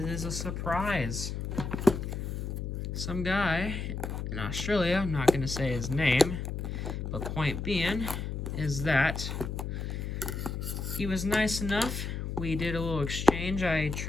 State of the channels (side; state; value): left; noise; hum, 4 dB below the sound